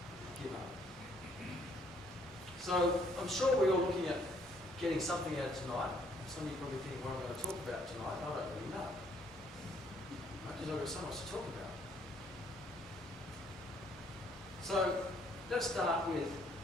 give up. So I'm sure we're all looking at getting something out of tonight. Some of you probably think what I'm going to talk about tonight. I don't really know. Because I've got so much to talk about. So let's start with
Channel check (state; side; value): normal; both; correlation 0.66